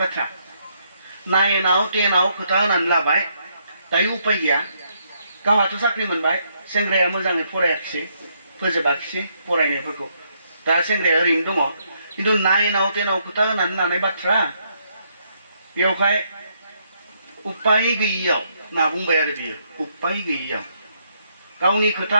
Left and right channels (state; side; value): inverted; both; correlation -0.74